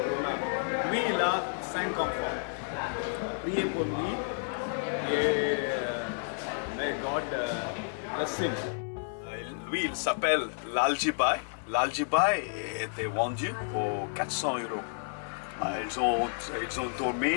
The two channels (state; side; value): silent; right; 57 dB below the other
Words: Lui, il a 5 enfants. Priez pour lui et may God bless him. Lui, il s'appelle l'Aljibai. L'Aljibai était vendu pour 400 €. Ils ont